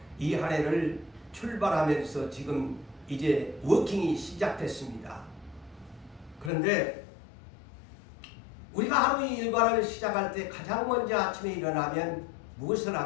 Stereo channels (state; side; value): drops out; right; at 6.5 s